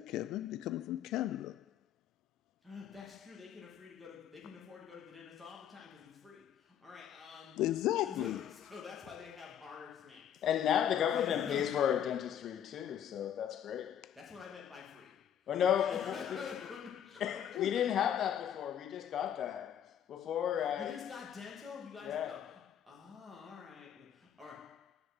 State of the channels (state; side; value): quieter; right; 9.6 dB